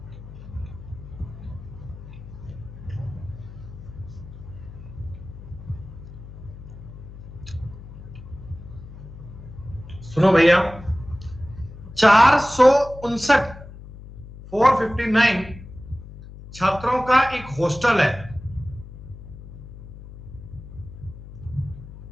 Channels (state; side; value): noise; left; hum, 15 dB below the sound